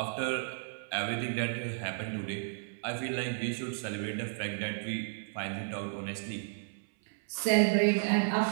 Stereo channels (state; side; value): silent; left; 56 dB below the other